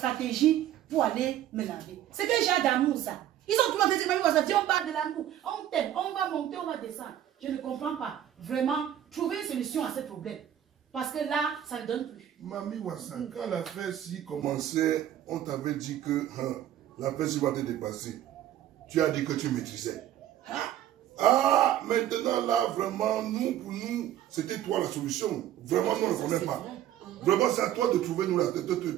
pour aller me laver. C'est que j'ai d'amour ça. Ils ont tout le monde dit, Mami Wassa, viens, on parle de l'amour. On t'aime, on va monter, on va descendre. Je ne comprends pas. Vraiment, trouver une solution à ce problème. Parce que là, ça ne donne plus. Mami Wassa, quand l'affaire-ci commençait, on t'avait dit que l'affaire-ci va te dépasser. Tu as dit que tu maîtrisais. Ah, maintenant là, vraiment, pour nous, c'était toi la solution. Vraiment, nous, on ne connaît pas. Vraiment, c'est à toi de trouver,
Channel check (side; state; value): left; quieter; 11.8 dB